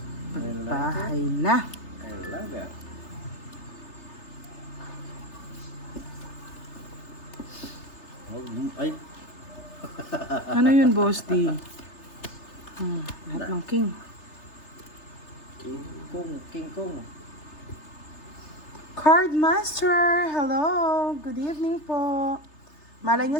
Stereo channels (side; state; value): right; late; 3.3 ms